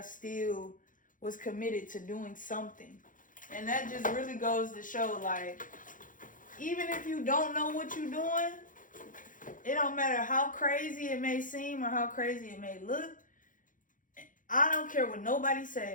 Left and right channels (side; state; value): right; late; 0.38 ms